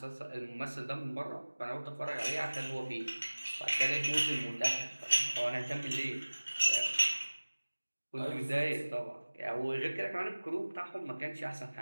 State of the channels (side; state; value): both; inverted; correlation -1.00